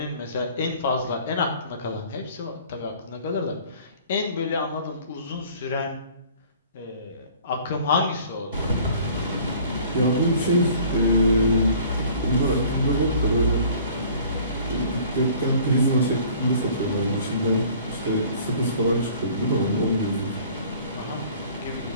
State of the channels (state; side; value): inverted; both; correlation -0.51